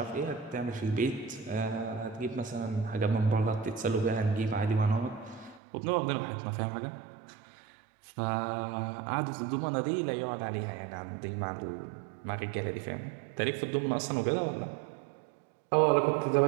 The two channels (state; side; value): drops out; left; at 5.6 s